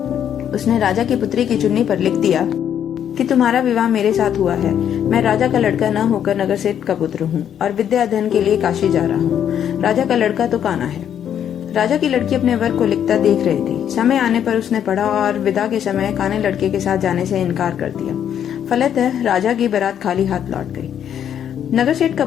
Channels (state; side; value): quieter; right; 9.4 dB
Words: उसने राजा की पुत्री की चुन्नी पर लिख दिया कि तुम्हारा विवाह मेरे साथ हुआ है। मैं राजा का लड़का न होकर नगर सेठ का पुत्र हूँ और विद्या अध्ययन के लिए काशी जा रहा हूँ। राजा का लड़का तो काना है। राजा की लड़की अपने वर को लिखता देख रही थी। समय आने पर उसने पढ़ा और विदा के समय काने लड़के के साथ जाने से इनकार कर दिया। फलतः राजा की बारात खाली हाथ लौट गई। नगर सेठ का